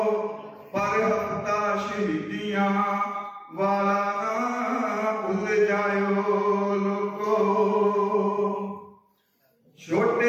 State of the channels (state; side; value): identical; both; correlation 1.00